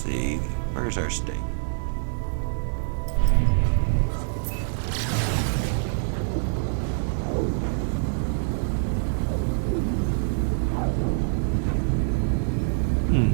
Where's our state?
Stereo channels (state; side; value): silent; left; 62 dB below the other